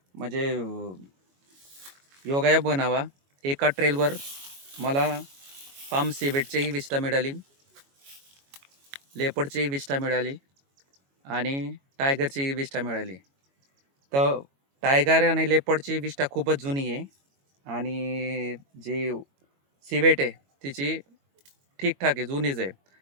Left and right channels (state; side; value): late; left; 22 ms